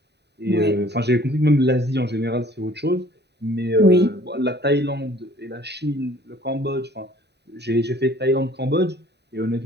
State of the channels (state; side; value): late; left; 0.49 ms